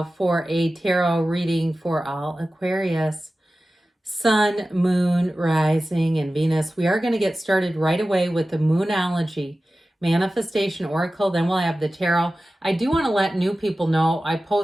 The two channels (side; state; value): both; normal; correlation 0.95